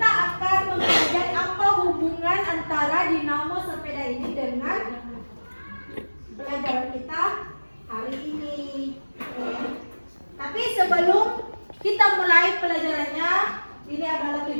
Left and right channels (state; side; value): inverted; both; correlation -1.00